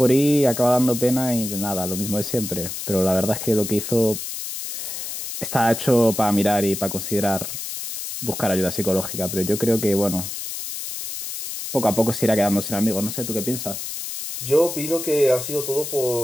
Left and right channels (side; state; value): left; noise; hiss, 7 dB below the sound